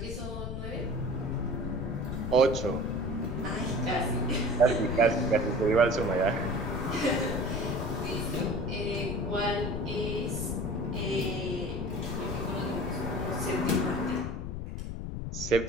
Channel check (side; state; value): left; noise; rumble, 5 dB below the sound